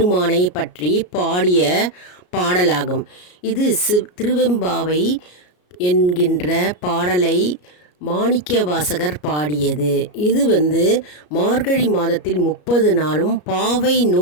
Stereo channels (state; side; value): late; right; 33 ms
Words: பற்றி பாடிய பாடலாகும். இது திருவெம்பாவை என்கின்ற பாடலை மாணிக்கவாசகர் பாடியது. இது மார்கழி மாதத்தில் 30 நாளும் பாவை